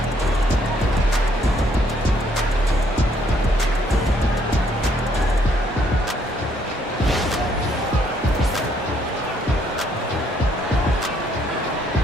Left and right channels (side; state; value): both; normal; correlation 0.68